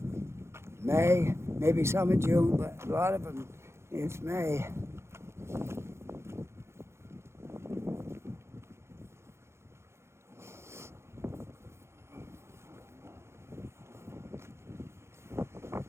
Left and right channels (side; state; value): left; late; 0.13 ms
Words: May, maybe some in June, but a lot of them, it's May.